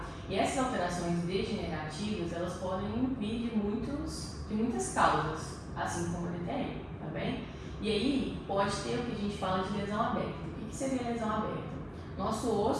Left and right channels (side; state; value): both; identical; correlation 1.00